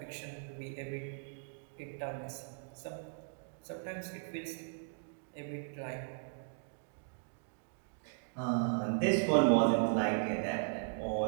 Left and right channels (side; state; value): left; silent; digital silence